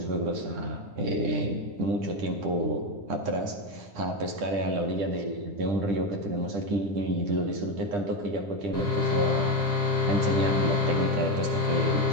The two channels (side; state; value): left; late; 10 ms